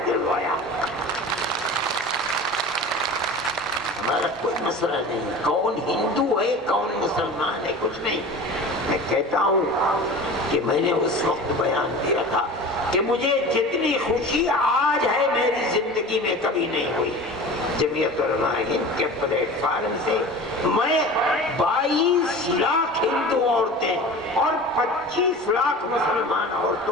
دلوایا۔ ہمارا کوئی مسئلہ نہیں، کون ہندو ہے کون مسلمان ہے، کچھ نہیں۔ میں کہتا ہوں کہ میں نے اس وقت بیان دیا تھا کہ مجھے جتنی خوشی آج ہے میری زندگی میں کبھی نہیں ہوئی. جمعیت علماء ہند کے پلیٹ فارم سے میں 22 لاکھ ہندو عورتیں اور 25 لاکھ مسلمان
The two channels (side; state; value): both; normal; correlation 0.36